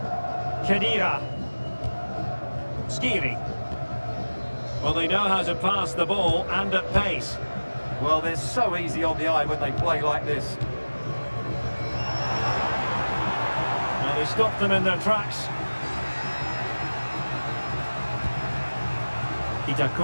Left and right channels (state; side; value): inverted; both; correlation -1.00